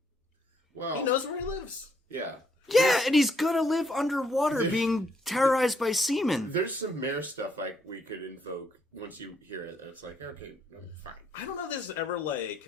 Well, he knows where he lives. Yeah. Yeah, and he's gonna live underwater being terrorized by seamen. There's some mayor stuff like we could invoke once you hear it. It's like, okay, fine. I don't know if this is ever,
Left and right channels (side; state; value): both; normal; correlation 0.72